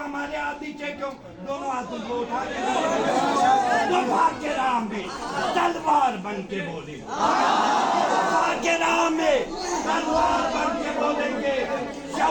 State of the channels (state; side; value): identical; both; correlation 1.00